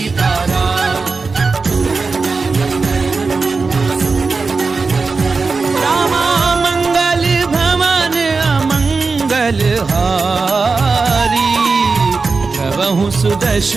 रामा मंगल भवन अमंगल हारी, प्रभु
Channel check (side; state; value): left; quieter; 4.3 dB